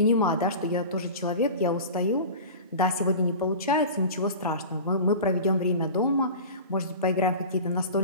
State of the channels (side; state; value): both; inverted; correlation -0.34